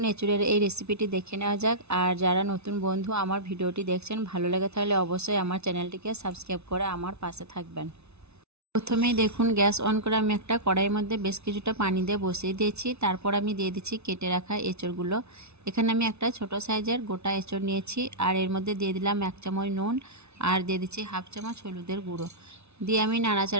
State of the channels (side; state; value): left; late; 0.81 ms